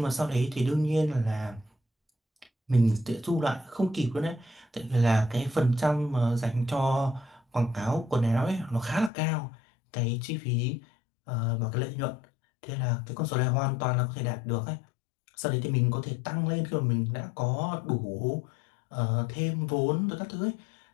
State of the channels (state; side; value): drops out; right; at 9.1 s